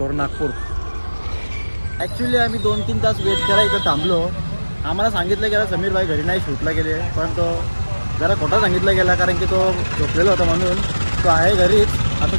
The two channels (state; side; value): inverted; both; correlation -1.00